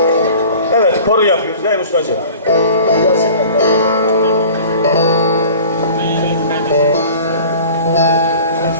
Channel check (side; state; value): both; inverted; correlation -0.43